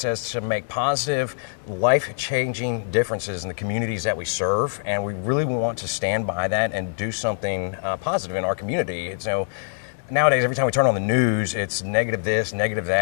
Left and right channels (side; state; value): right; silent; digital silence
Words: to make positive, life-changing differences in the communities that we serve, and we really want to stand by that and do something positive in our community. So nowadays, every time we turn on the news, it's negative this, negative